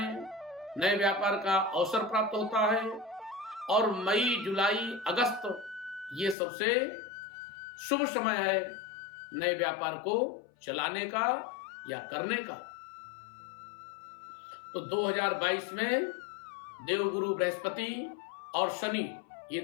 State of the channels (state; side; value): drops out; right; at 6.4 s